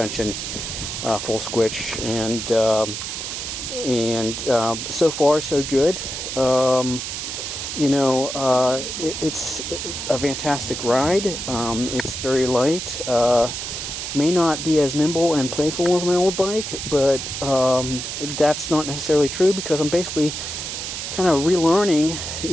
full squish, and so far so good. It's a fantastic ride. It's very light. May not be as nimble and playful as my old bike, but that's not necessarily true because I'm basically kind of relearning,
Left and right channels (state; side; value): noise; right; hiss, 5 dB below the sound